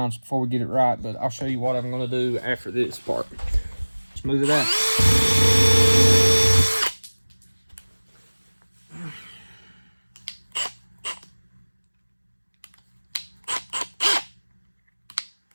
before we get it right, but I'll show you what I'm gonna do after this part. Smooth it out.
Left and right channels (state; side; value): inverted; both; correlation -1.00